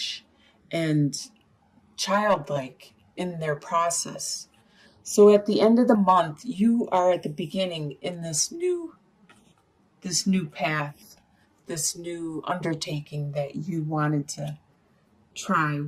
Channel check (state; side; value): identical; both; correlation 1.00